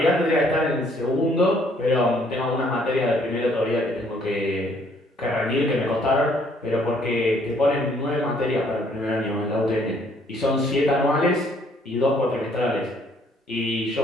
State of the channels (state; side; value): normal; both; correlation 0.64